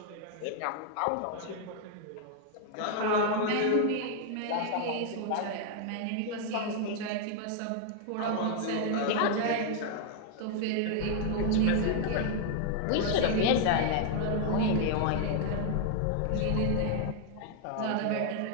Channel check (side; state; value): both; different; correlation 0.00